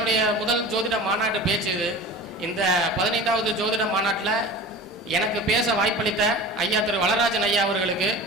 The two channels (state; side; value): normal; both; correlation 0.36